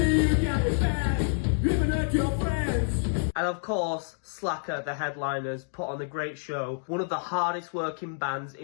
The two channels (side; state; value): right; silent; digital silence